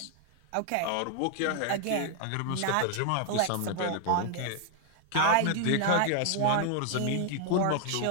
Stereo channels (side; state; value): both; different; correlation 0.00